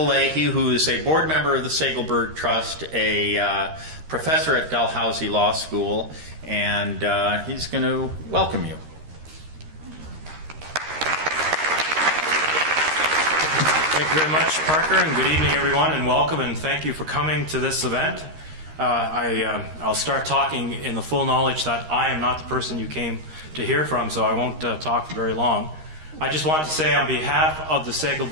Leahy, who is a board member of the Segelberg Trust, a professor at Dalhousie Law School, and he's going to welcome you. Thank you very much, Parker, and good evening, everyone, and welcome, and thank you for coming to this event. I'll start talking in the full knowledge that I am not the person you came to hear from, so I won't talk for very long. I just want to say on behalf of the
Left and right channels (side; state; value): left; late; 13 ms